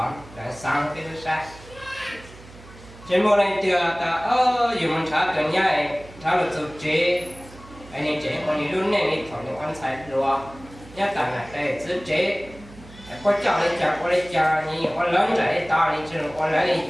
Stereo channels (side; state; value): right; noise; hum, 20 dB below the sound